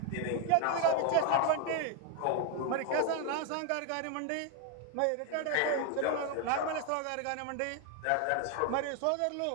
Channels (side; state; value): both; different; correlation 0.01